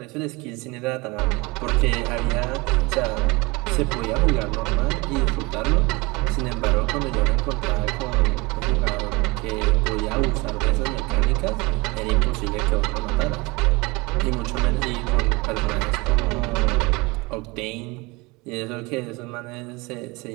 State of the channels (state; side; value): quieter; left; 25.1 dB